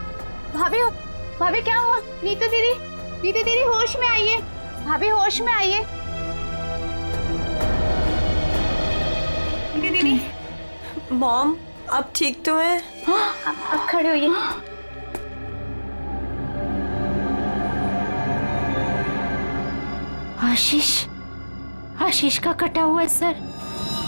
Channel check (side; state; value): both; inverted; correlation -1.00